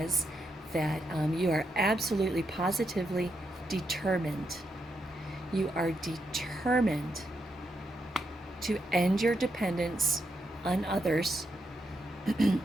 that you are absolutely positively determined. You are determined to end your dependence on others.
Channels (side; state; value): both; normal; correlation 0.82